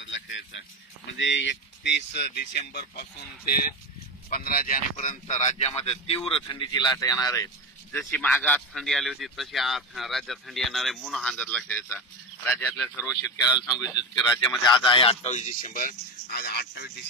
लक्षात यायचा. म्हणजे 31 डिसेंबर पासून ते 15 जानेवारीपर्यंत राज्यामध्ये तीव्र थंडीची लाट येणार आहे. जशी मागात थंडी आली होती तशी राज्यात थंडी येणार आहे. म्हणून हा अंदाज लक्षात यायचा. राज्यातल्या सर्व शेतकऱ्याला सांगू इच्छितो की राज्यामध्ये आज आहे 28 डिसेंबर. आज 28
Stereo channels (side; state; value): both; normal; correlation 0.20